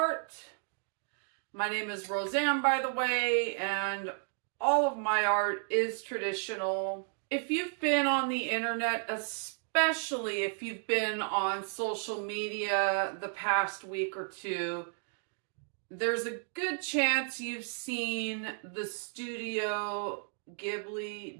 My name is Roseanne, by the way, and all of my art is traditional. If you've been on the internet, especially if you've been on social media the past week or two, there's a good chance you've seen the Studio Ghibli,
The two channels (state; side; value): silent; left; 56 dB below the other